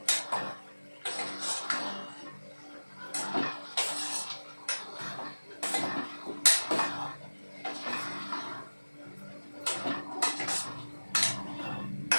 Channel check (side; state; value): both; inverted; correlation -1.00